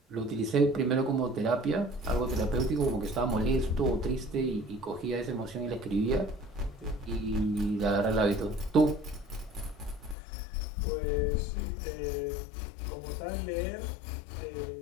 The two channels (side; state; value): right; drops out; at 10.2 s